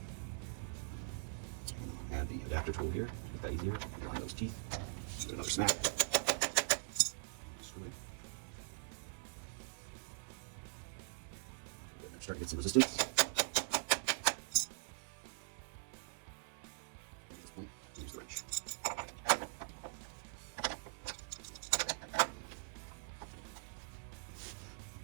Add the adapter tool here, make that easier. Line those teeth. Do another snap. Screw it. Start to get some resistance. At this point, use the wrench.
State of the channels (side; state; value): left; silent; digital silence